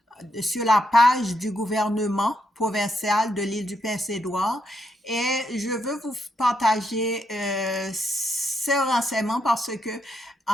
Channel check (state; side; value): normal; both; correlation 0.79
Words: sur la page du gouvernement provincial de l'île du Prince-Édouard et je veux vous partager ces renseignements parce que